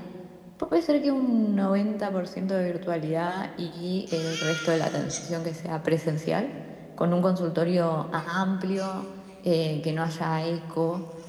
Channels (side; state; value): both; identical; correlation 1.00